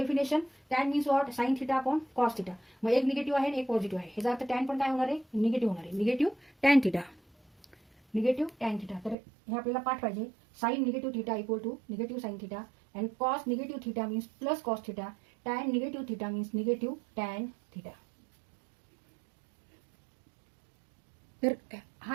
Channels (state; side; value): drops out; left; at 9.2 s